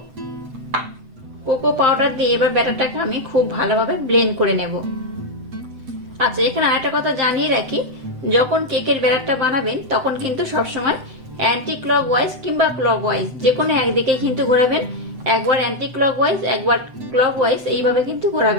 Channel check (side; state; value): left; late; 7.9 ms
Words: কোকো পাউডার দিয়ে এবার ব্যাটারটাকে আমি খুব ভালোভাবে ব্লেন্ড করে নেব। আচ্ছা, এখানে আরেকটা কথা জানিয়ে রাখি, যখন কেকের ব্যাটারটা বানাবেন তখন কিন্তু সবসময় অ্যান্টি ক্লকওয়াইজ কিংবা ক্লকওয়াইজ যে কোনো একদিকে কিন্তু ঘোরাবেন। একবার অ্যান্টি ক্লকওয়াইজ একবার ক্লকওয়াইজ এইভাবে কিন্তু